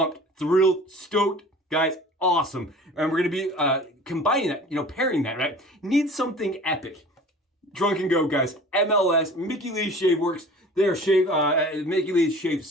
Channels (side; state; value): both; normal; correlation 0.43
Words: thrilled, stoked, guys. Awesome. And we're going to be combining that, pairing that, right? Need something epic. Drunken Go, guys. MLS, Mickey Lee's Shave Works. Their Mickey Lee's Shave